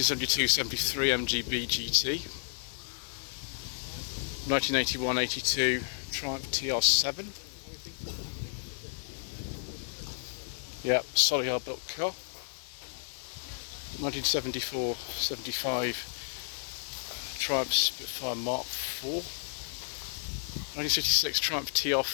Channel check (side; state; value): right; silent; 56 dB below the other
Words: MGB GT. 1981-82 Triumph TR7. Yep, solid hard built car. 1974-75 Triumph Spitfire Mark IV. 1966 Triumph